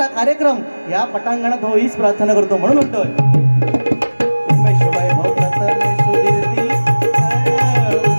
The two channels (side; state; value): both; inverted; correlation -1.00